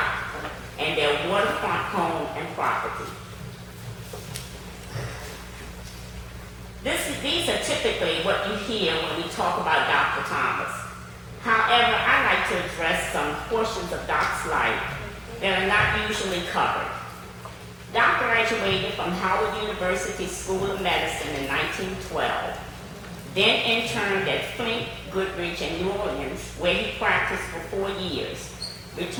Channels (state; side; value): identical; both; correlation 1.00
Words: and their waterfront home and property. These are typically what you hear when we talk about Dr. Thomas. However, I like to address some portions of Doc's life that are not usually covered. Doc graduated from Howard University School of Medicine in 1912, then interned at Flint, Goodrich, and New Orleans, where he practiced for 4 years,